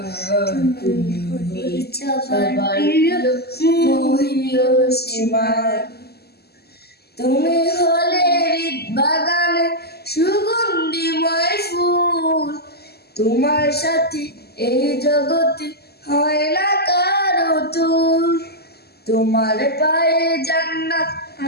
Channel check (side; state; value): right; late; 0.46 ms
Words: তুমি হলে সবার প্রিয় মহিয়সীমা। তুমি হলে হৃদ বাগানে সুগন্ধিময় ফুল, তোমার সাথে এই জগতে হয় না কারো তুল। তোমার পায়ে জান্নাত